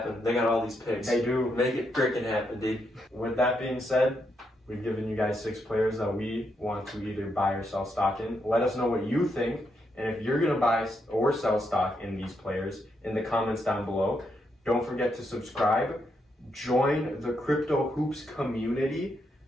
They got all these picks. They do. Make it freaking happen, dude. With that being said, we've given you guys 6 players that we want to either buy or sell stock in. Let us know what you think, and if you're going to buy or sell stock in these players in the comments down below. Don't forget to subscribe, join the Crypto Hoops community,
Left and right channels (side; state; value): both; normal; correlation 0.80